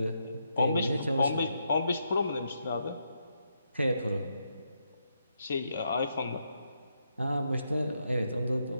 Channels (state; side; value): inverted; both; correlation -0.80